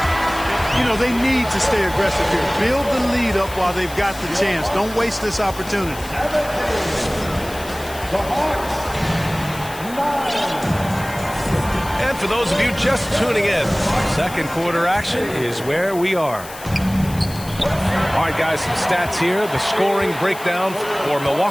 You know, they need to stay aggressive here. Build the lead up while they've got the chance. Don't waste this opportunity. And for those of you just tuning in, second quarter action is where we are. All right, guys, some stats here. The scoring breakdown for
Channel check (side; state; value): left; noise; hiss, 15 dB below the sound